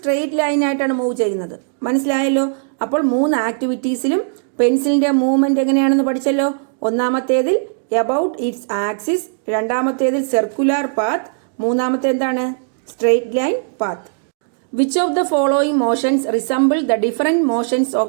ലൈനായിട്ടാണ് മൂവ് ചെയ്യുന്നത്. മനസ്സിലായല്ലോ? അപ്പോൾ 3 ആക്ടിവിറ്റീസിലും പെൻസിലിന്റെ മൂവ്മെന്റ് എങ്ങനെയാണെന്ന് പഠിച്ചല്ലോ. ഒന്നാമത്തേതിൽ എബൌട്ട് ഇറ്റ്സ് ആക്സിസ്, രണ്ടാമത്തേതിൽ സർക്കുലാർ പാത്ത്, മൂന്നാമത്തെ എന്താണ്? Straight line path. Which of the following motions resemble the different motions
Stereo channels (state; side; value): silent; left; digital silence